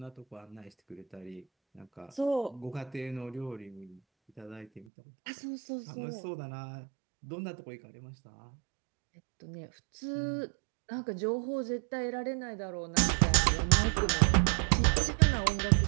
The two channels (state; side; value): drops out; left; at 4.9 s